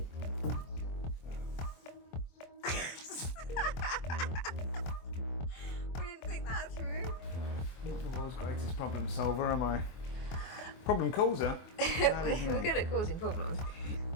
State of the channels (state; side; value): late; right; 24 ms